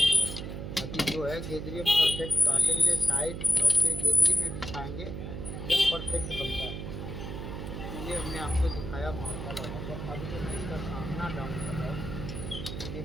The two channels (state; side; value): noise; right; hum, 6 dB below the sound